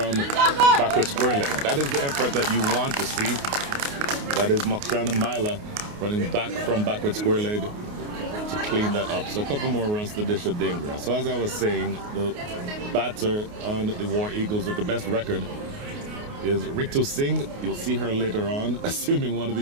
backward square leg. That is the effort that you want to see. That is Mokshana Maila running back from backward square leg to clean that up. So a couple more runs to Disha Dingra. So as I was saying, the batter on the War Eagles with the best record is Ritu Singh. You'll see her later on, assuming one of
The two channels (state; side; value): late; left; 29 ms